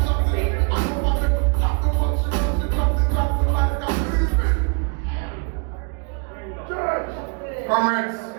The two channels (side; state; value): left; quieter; 36.7 dB